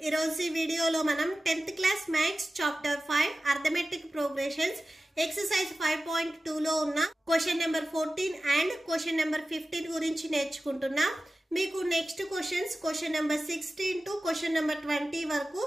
Irozi video lo manam 10th class maths chapter 5 arithmetic progressions exercise 5.2 lo unna question number 14 and question number 15 gurinchi నేర్చుకుంటున్నా. మీకు next question number 16 to question number 20 వరకు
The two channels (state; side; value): normal; both; correlation 0.95